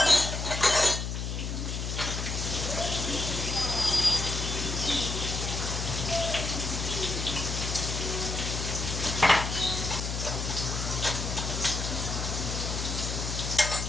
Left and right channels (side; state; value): left; noise; hum, 3 dB below the sound